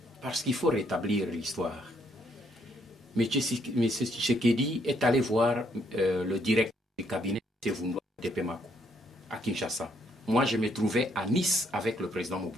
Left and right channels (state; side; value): normal; both; correlation 0.71